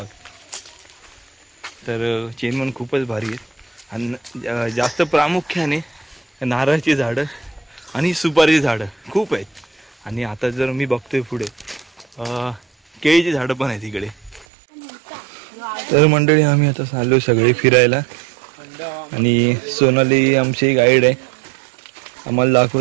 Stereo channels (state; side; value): drops out; left; at 14.5 s